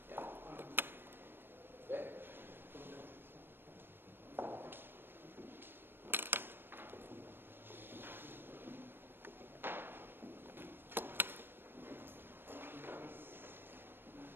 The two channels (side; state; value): left; late; 0.099 ms